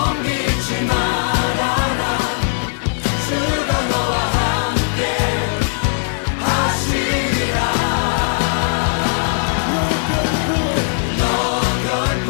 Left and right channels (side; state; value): right; silent; 65 dB below the other